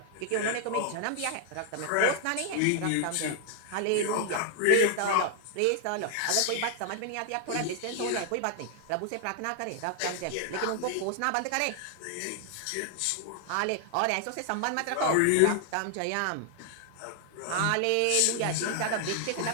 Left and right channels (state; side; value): different; both; correlation 0.00